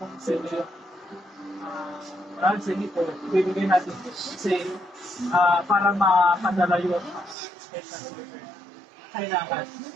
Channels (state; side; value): drops out; left; at 7.4 s